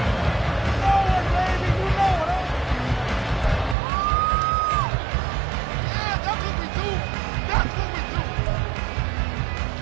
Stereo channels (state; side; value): drops out; left; at 3.8 s